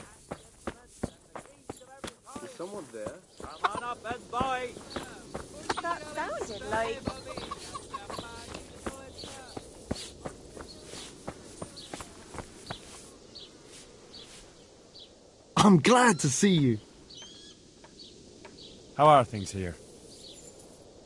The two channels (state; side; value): identical; both; correlation 1.00